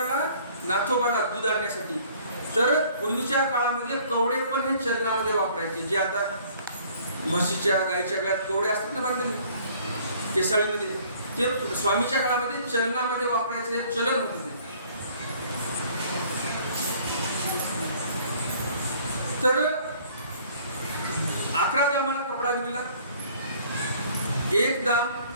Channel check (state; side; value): inverted; both; correlation -0.56